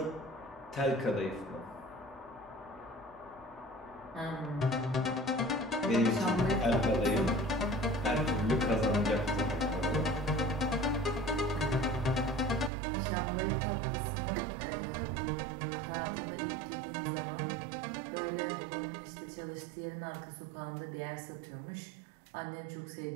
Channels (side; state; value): left; drops out; at 12.7 s